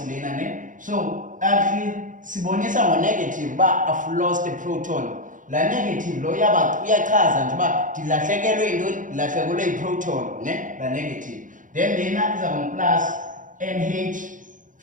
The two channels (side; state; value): left; late; 0.38 ms